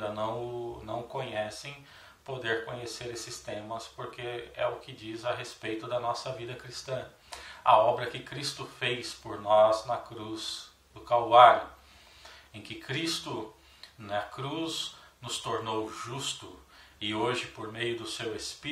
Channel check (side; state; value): both; identical; correlation 1.00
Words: não conhecem, poder conhecer esses temas, porque é o que diz a respeito da nossa vida cristã. A obra que Cristo fez por nós na cruz do Calvário, em que Cristo na cruz nos tornou justo e hoje, por meio do seu